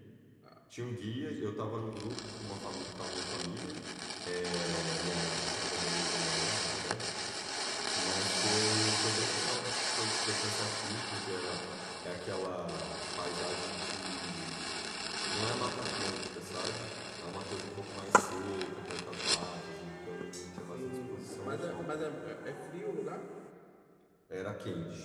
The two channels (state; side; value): identical; both; correlation 1.00